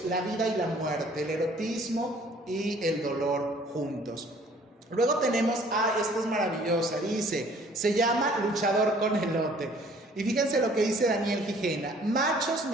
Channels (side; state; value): both; normal; correlation 0.56